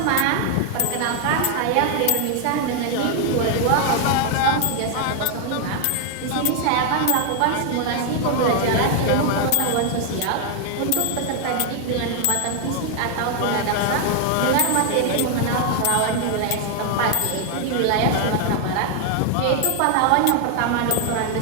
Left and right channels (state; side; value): different; both; correlation 0.00